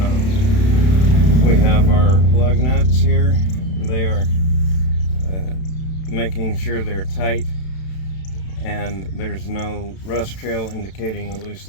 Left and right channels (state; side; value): late; right; 32 ms